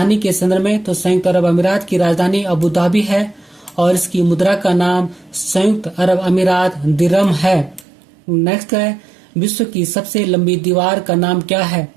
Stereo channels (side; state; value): left; drops out; at 7.9 s